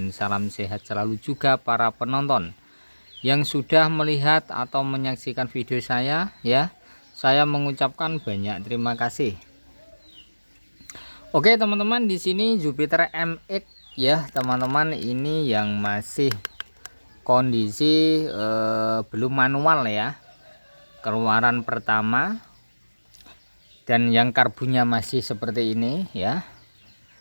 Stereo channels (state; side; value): inverted; both; correlation -1.00